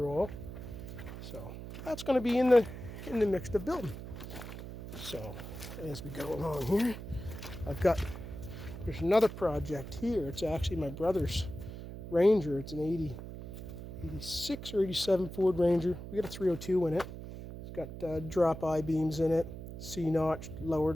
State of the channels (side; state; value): right; noise; hum, 10 dB below the sound